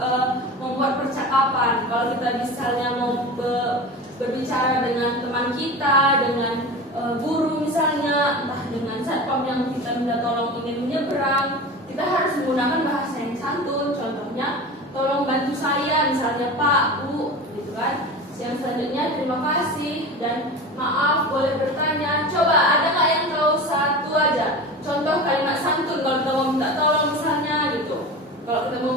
membuat percakapan. Kalau kita misalnya mau berbicara dengan teman kita, dengan guru misalnya, entah dengan satpam yang kita minta tolong ingin menyeberang, kita harus menggunakan bahasa yang santun. Contohnya, tolong bantu saya, misalnya Pak, Bu, gitu kan. Yang selanjutnya terima kasih dan maaf boleh bertanya. Coba ada nggak yang tahu satu aja contoh kalimat santun kalau kita mau minta tolong misalnya gitu. Kalau kita mau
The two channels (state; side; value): normal; both; correlation 0.31